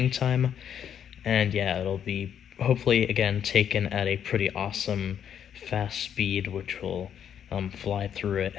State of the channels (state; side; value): quieter; right; 8.9 dB